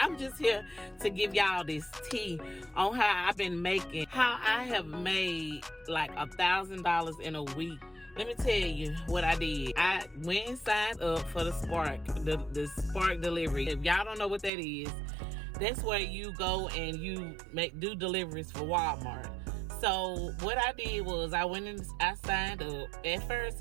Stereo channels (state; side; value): drops out; left; at 14.5 s